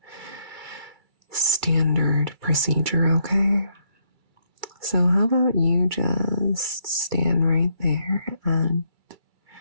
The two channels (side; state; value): left; late; 2.3 ms